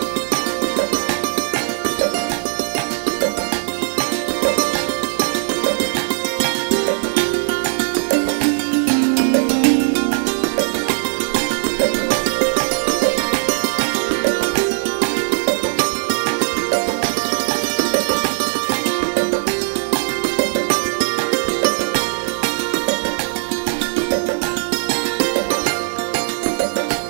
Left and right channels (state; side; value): silent; left; 55 dB below the other